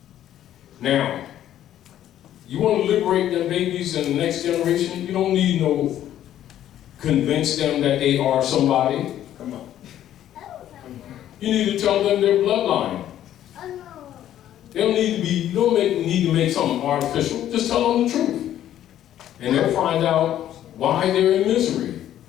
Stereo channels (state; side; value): quieter; right; 11.7 dB